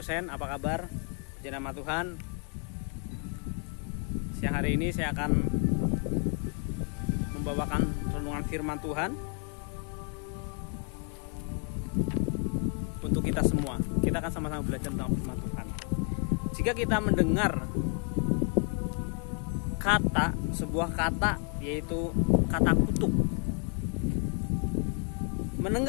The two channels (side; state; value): right; quieter; 38.8 dB